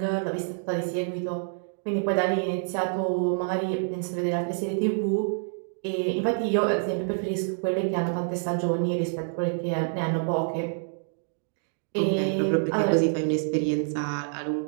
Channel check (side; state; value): left; silent; digital silence